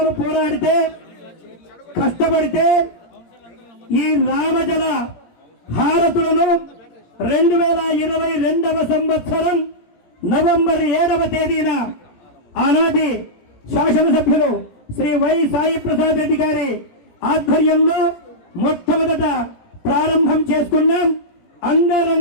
పోరాడితే, కష్టపడితే ఈ రామజల హారతులను 2022వ సంవత్సరం నవంబర్ 7వ తేదీన ఆనాటి శాసనసభ్యులు శ్రీ వై సాయి ప్రసాద్ రెడ్డి గారి ఆధ్వర్యంలో మొట్టమొదట ప్రారంభం చేసుకున్నాం.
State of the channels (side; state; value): right; late; 17 ms